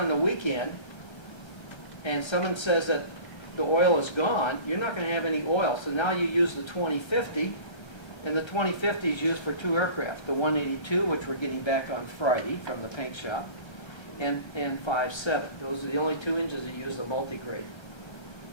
the weekend and someone says that the oil is gone, you're not going to have any oil. So now you use the 2050, and the 2050 is used for 2 aircraft, the 182, which we're getting back on Friday from the paint shop, and 57. Those are the only 2 engines that use the multi-grade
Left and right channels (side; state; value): right; late; 1.3 ms